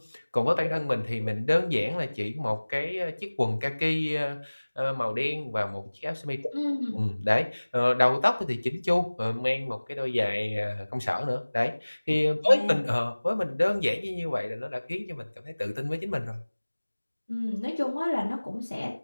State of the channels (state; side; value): inverted; both; correlation -1.00